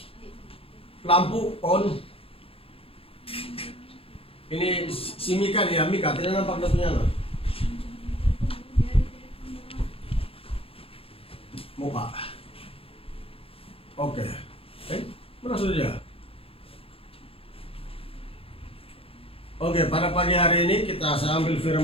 Lampu on. Ini si Mika dia. Mika tidak nampak datunya. Muka. Oke. Mana sudah dia? Oke, pada pagi hari ini kita ambil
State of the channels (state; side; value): late; right; 0.27 ms